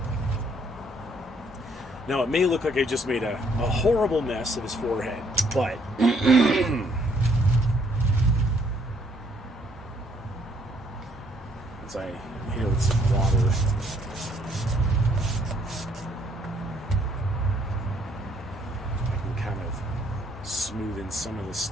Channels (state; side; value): normal; both; correlation 0.66